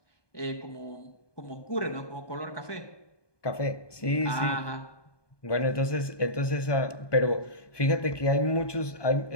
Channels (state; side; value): late; right; 1.2 ms